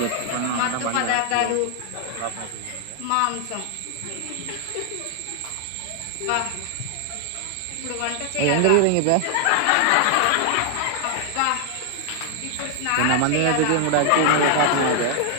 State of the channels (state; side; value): different; both; correlation 0.00